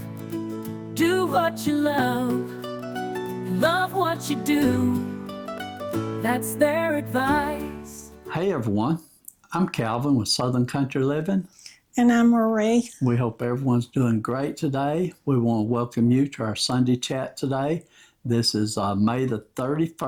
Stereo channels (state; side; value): identical; both; correlation 1.00